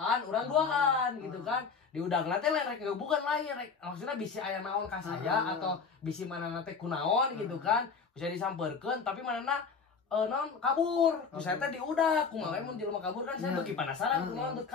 urang duaan gitu kan. Diudagna teh lain rek bukan lain rek maksudnya bisi aya naon ka saya atau bisi manehna teh kunaon gitu kan. Bisa disamperkeun tapi manehna naon kabur. Ku saya teh diudag, kumaha mun jelema kabur kan saya bagi penasaran kunaon teu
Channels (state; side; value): quieter; right; 5.4 dB